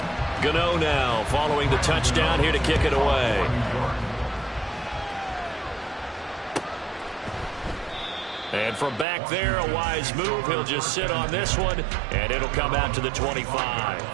Gano now following the touchdown here to kick it away. And from back there, a wise move. He'll just sit on this one, and it'll come out to the 25.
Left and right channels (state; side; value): drops out; left; at 9.1 s